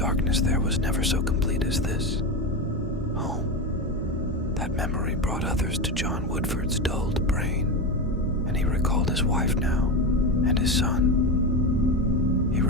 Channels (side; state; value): both; normal; correlation 0.16